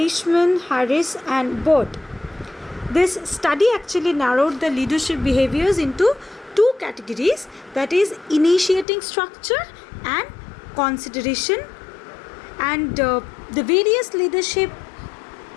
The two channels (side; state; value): right; drops out; at 8.8 s